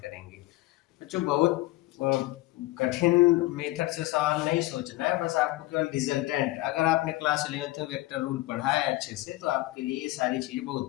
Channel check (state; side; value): quieter; right; 18.4 dB